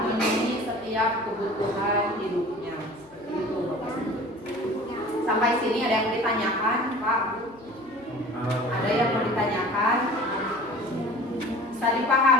memenuhi setiap kebutuhan hidupnya. Seperti itu, Bapak. Sampai sini ada yang ditanyakan, Pak? Ada yang mau ditanyakan? Bisa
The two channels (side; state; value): left; noise; hum, 27 dB below the sound